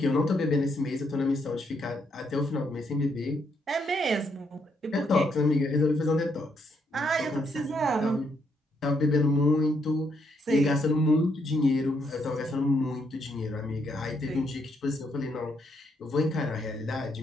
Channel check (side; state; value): both; normal; correlation 0.75